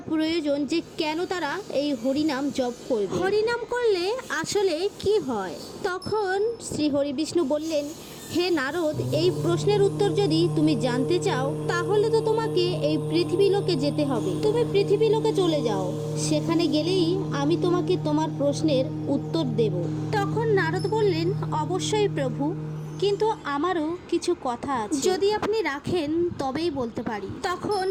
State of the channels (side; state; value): both; identical; correlation 1.00